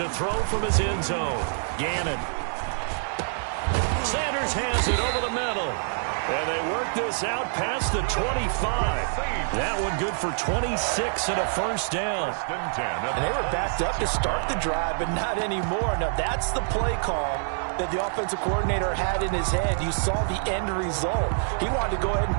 throw from his end zone, Gannon. Sanders has it over the middle. And they work this out past the 25. That one good for 26 and a first down. And they were backed up to start the drive, but not anymore. Now, that's the play call that the offensive coordinator had in his head. You saw the end result. He wanted to go ahead and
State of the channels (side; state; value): left; silent; digital silence